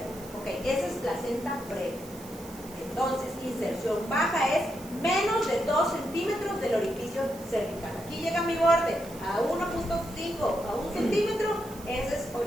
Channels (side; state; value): right; noise; hiss, 18 dB below the sound